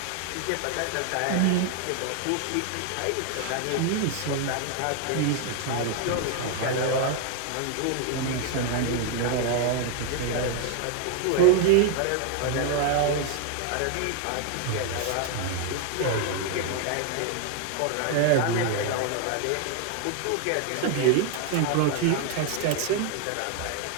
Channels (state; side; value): different; both; correlation 0.00